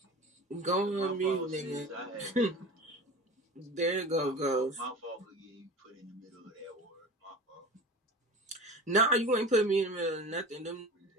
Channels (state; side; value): normal; both; correlation 0.35